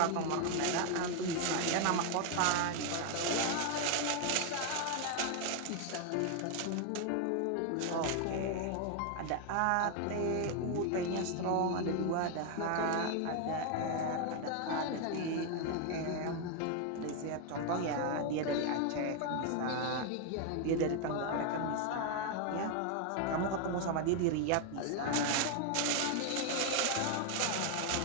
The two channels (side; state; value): both; different; correlation 0.01